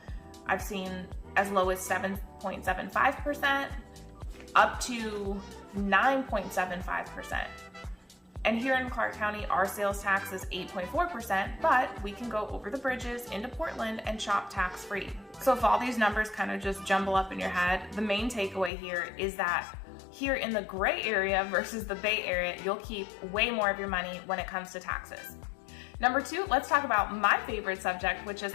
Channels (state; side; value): drops out; right; at 18.7 s